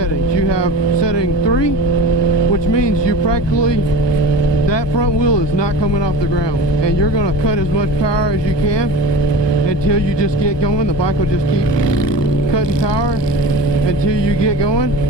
You have setting 3, which means you practically, that front wheel is not coming off the ground, and you're going to cut as much power as you can until you just get going. The bike will just keep cutting power until you get going.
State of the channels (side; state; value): right; late; 1.2 ms